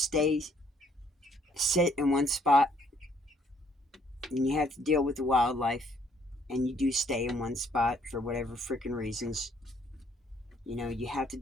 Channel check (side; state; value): both; normal; correlation 0.65